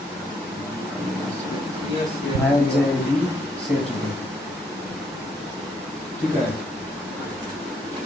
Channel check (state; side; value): normal; both; correlation 0.72